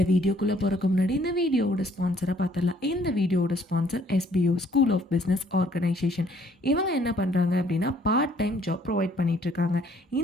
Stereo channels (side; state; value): both; normal; correlation 0.63